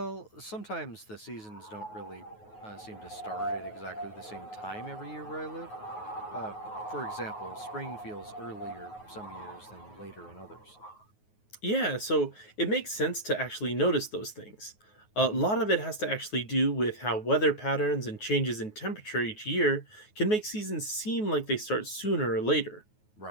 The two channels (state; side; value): late; right; 9.4 ms